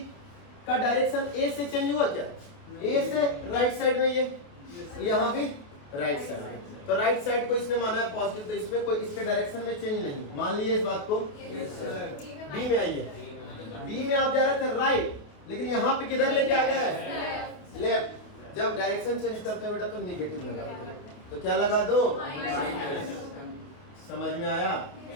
का डायरेक्शन A से चेंज हुआ क्या? A से राइट साइड में, ये यहाँ भी राइट साइड में, तो राइट साइड को इसने माना है पॉजिटिव, तो इसमें कोई इसके डायरेक्शन में चेंज नहीं। मान लीजिए इस बात को। B में आइए, B में आप जा रहे थे राइट, लेकिन यहाँ पे किधर लेके आ गए? लेफ्ट। जब डायरेक्शन चेंज करते हैं बेटा तो निगेटिव लगा दो, तो क्या लगा दो? समझ में आया?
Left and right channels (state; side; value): late; right; 28 ms